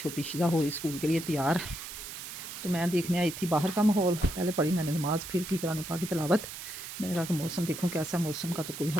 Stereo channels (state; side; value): noise; right; hiss, 9 dB below the sound